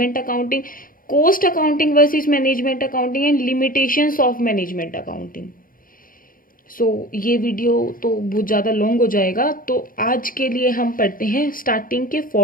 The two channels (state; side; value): late; right; 0.41 ms